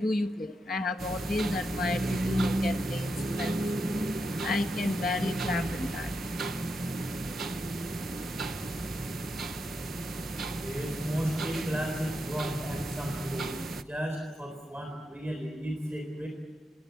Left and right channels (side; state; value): both; normal; correlation 0.85